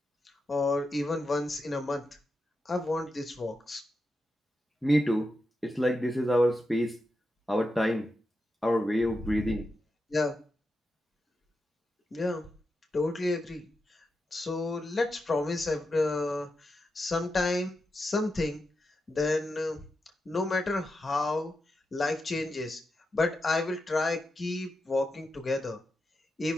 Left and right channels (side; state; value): both; normal; correlation 0.88